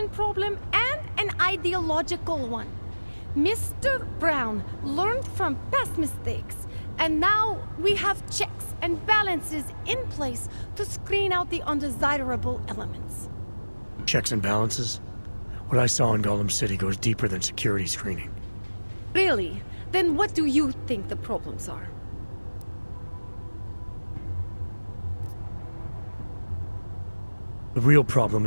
problem and an ideological one. Mr. Brown learned from past mistakes, and now we have checks and balances in place to screen out the undesirable elements. Checks and balances? What I saw in Gollum City goes deeper than security screening. Really? Then what do you think the problems are? The real problem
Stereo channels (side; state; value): both; inverted; correlation -1.00